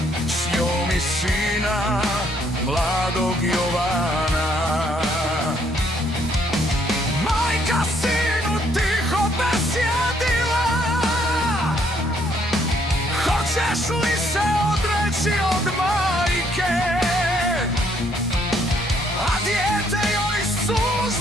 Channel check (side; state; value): both; normal; correlation 0.68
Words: s njom i sina mladog Jovana. Majka sinu tiho besjedila, hoćeš li se odreći od majke, a dijete joj